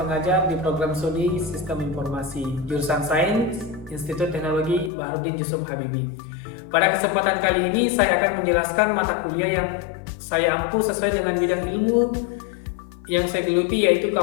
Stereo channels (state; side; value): drops out; right; at 4.9 s